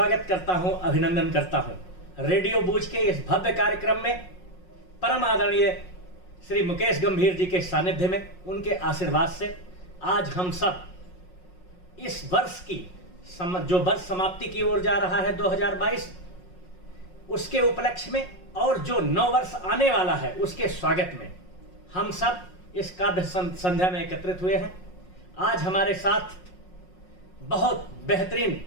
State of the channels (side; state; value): right; late; 5.5 ms